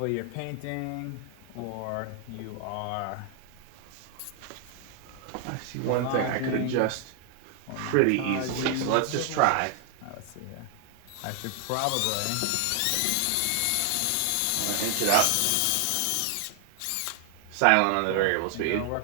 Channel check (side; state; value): both; different; correlation 0.00